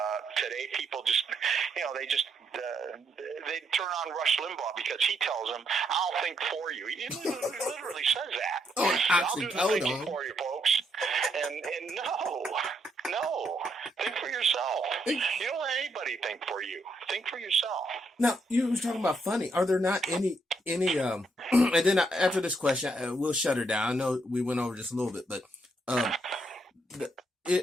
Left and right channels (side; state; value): both; normal; correlation 0.76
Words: Today, people just, they turn on Rush Limbaugh because he tells them, I'll think for you. He literally says that. I'll do the thinking for you, folks. And no, think for yourself. You don't let anybody think for you. Think for yourself. Now, you were talking about funny. Are there not any and then after this question, we'll shut her down. I know we went over just a little bit, but